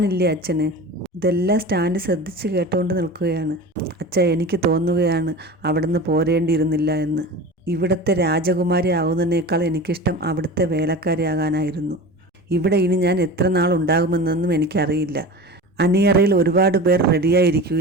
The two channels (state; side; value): normal; both; correlation 0.33